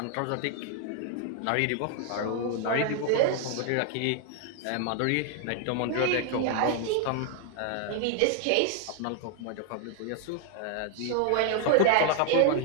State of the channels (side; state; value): both; different; correlation 0.00